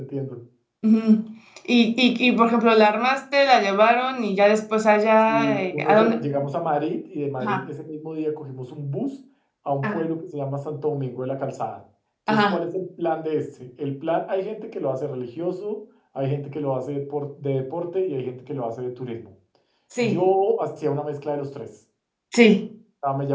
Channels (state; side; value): identical; both; correlation 1.00